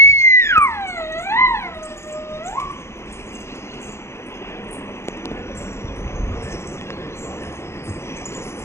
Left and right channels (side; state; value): right; late; 0.13 ms